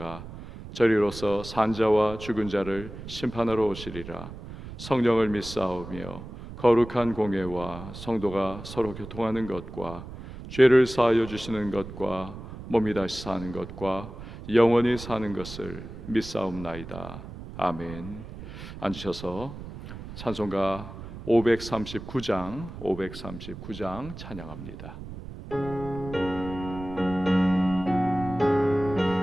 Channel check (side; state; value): right; noise; rumble, 12 dB below the sound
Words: 저리로서 산자와 죽은 자를 심판하러 오시리라. 성령을 믿사오며 거룩한 공예와 성도가 서로 교통하는 것과 죄를 사하여 주시는 것과 몸이 다시 사는 것과 영원히 사는 것을 믿사옵나이다. 아멘. 앉으셔서 찬송가 539장 찬양합니다.